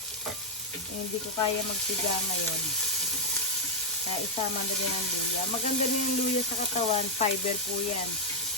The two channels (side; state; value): both; normal; correlation -0.02